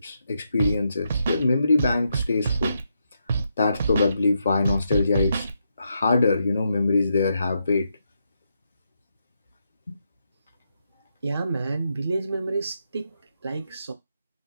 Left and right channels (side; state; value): both; inverted; correlation -0.82